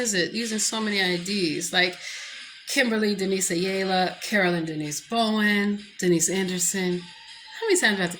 it? Using so many IDs, like Kimberly Denise Ayala, Carolyn Denise Bowen, Denise Anderson. How many times do I have to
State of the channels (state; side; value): identical; both; correlation 1.00